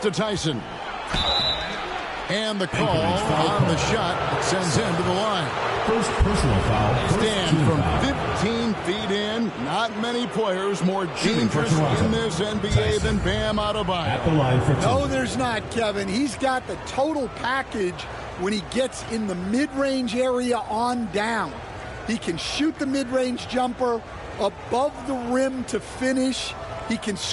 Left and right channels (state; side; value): identical; both; correlation 1.00